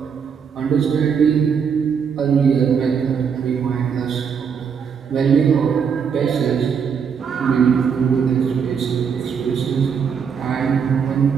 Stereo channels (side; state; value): left; quieter; 6.7 dB